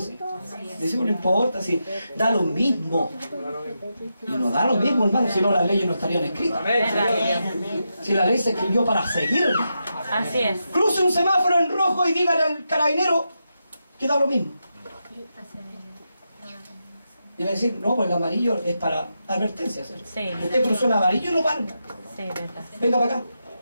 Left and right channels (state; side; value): inverted; both; correlation -0.86